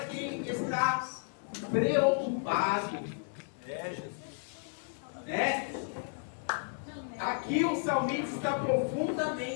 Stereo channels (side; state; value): right; silent; digital silence